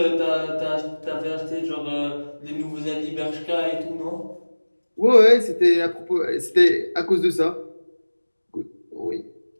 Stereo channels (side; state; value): both; inverted; correlation -1.00